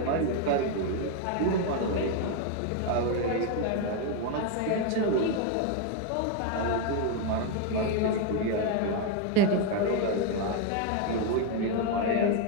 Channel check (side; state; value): both; different; correlation 0.01